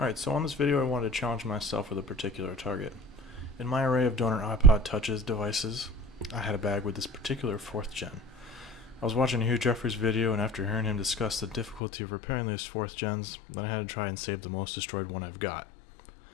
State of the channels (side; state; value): right; drops out; at 11.8 s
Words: Alright, so on this video I wanted to challenge myself with a particular target. In my array of donor iPod Touches devices, I had a bag with this particular 4th gen. I was watching Hugh Jeffrey's video, and after hearing him discuss the difficulty of repairing these 4th gens, then I had to try and save the most destroyed one I've got.